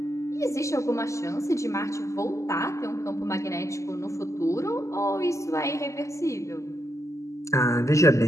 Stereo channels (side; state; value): right; late; 0.15 ms